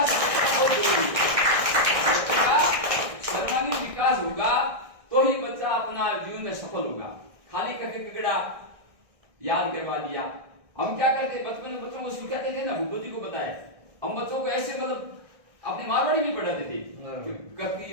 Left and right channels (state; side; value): late; left; 1.6 ms